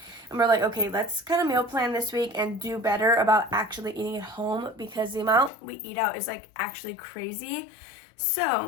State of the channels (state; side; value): drops out; right; at 5.5 s